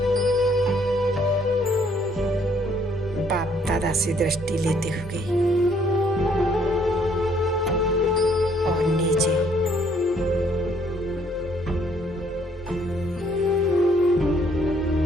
बाप दादा से दृष्टि लेते हुए और नीचे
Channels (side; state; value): both; normal; correlation 0.65